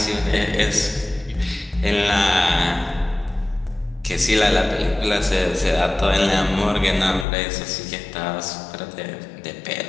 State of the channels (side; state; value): right; drops out; at 7.2 s